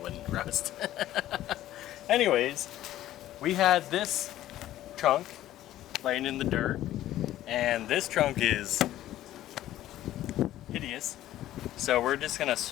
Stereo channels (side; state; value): right; quieter; 13.7 dB